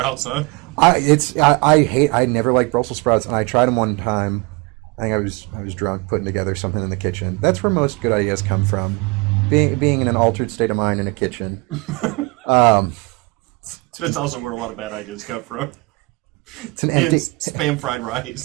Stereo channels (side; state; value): left; quieter; 26.5 dB